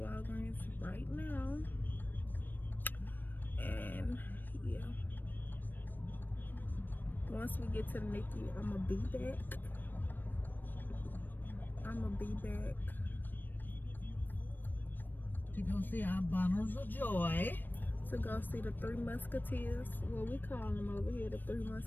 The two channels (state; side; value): late; right; 0.092 ms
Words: right now. And yeah, once we get to the NICU, I'm gonna be back. To go see our bundles of joy. To go see the Three Musketeers. Well, we call them over here the Three